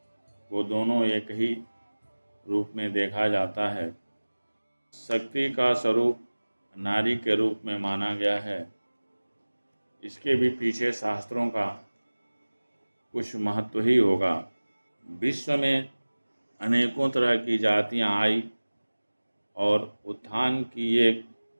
को दोनों एक ही रूप में देखा जाता है। शक्ति का स्वरूप नारी के रूप में माना गया है। इसके भी पीछे शास्त्रों का कुछ महत्व ही होगा। विश्व में अनेकों तरह की जातियां आई और उत्थान की एक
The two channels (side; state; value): both; inverted; correlation -1.00